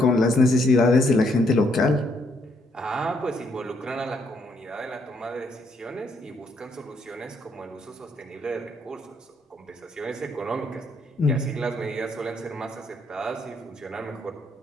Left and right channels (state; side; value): normal; both; correlation 0.71